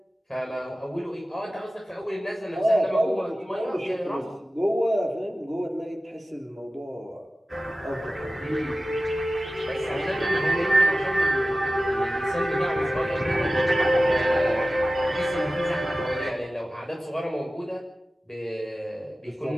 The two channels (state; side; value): normal; both; correlation 0.96